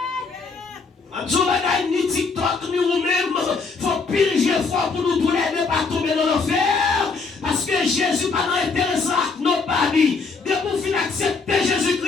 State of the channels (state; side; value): quieter; right; 4.5 dB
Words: En tout cas, ni TikTok, ni vous-même, il faut pile fort pour nous tourner ne pas tomber dans l'enfer. Parce que Jésus pas intéressant à nos partis. Dès qu'on finit accepter